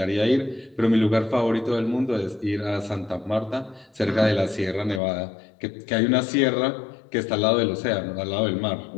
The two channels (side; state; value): right; drops out; at 5.0 s